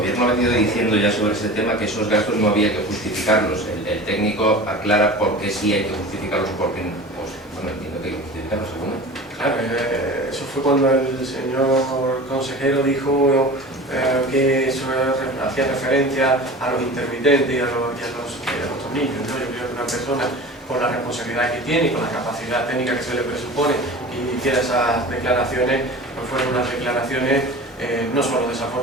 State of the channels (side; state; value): both; normal; correlation 0.36